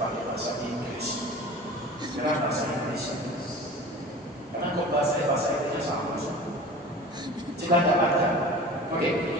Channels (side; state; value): both; normal; correlation 0.38